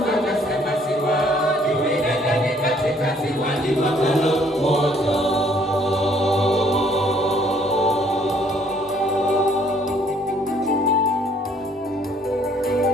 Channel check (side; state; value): both; normal; correlation 0.62